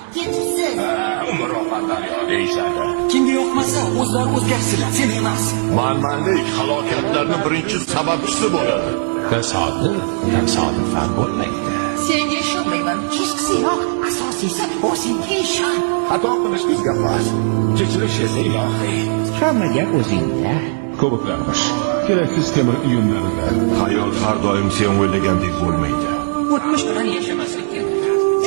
ketibsiz. Umr oqandaryo deyishadi. Kimga yoqmasa o'zlari o'zgarsinlar, sen emas. Manmanlik halokatlarning birinchi sababchisi bo'ladi. Tasodifan bo'lmaydi. Senga ishonmayman. Kechqisiyoq. Asosiysi o'zingga ishon. Xato qilish bizga xos. Kechirish esa ilohiy. Hamma gap o'zingda. Ko'plarmish. Keraksiz temir uyumlarida. Hayot har doim sen o'ylagandek bo'lmaydi. O'tmish bilan yashamaslik kerak.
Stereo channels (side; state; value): left; silent; 66 dB below the other